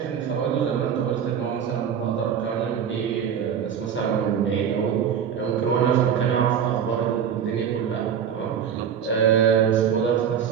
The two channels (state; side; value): quieter; left; 8.2 dB